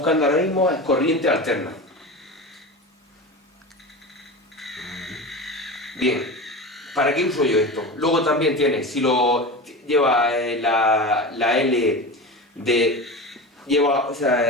ahora mismo es corriente alterna. Bien, ¿para qué uso yo esto? Luego también tiene, si lo lleva la L de... lleva, o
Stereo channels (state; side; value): normal; both; correlation 0.27